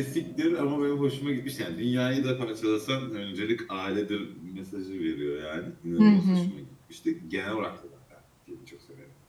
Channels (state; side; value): identical; both; correlation 1.00